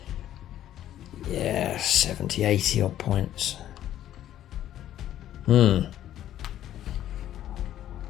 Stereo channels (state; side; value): quieter; right; 12.0 dB